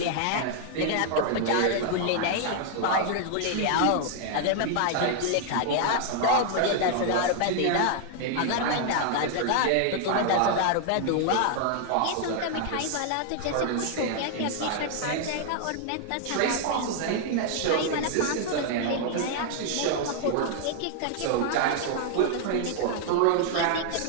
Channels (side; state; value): both; different; correlation 0.00